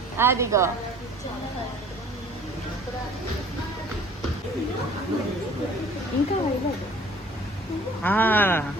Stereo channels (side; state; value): both; normal; correlation 0.52